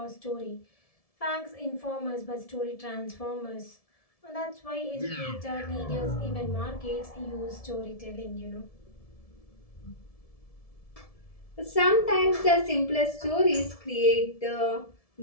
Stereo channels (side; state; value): right; late; 1.7 ms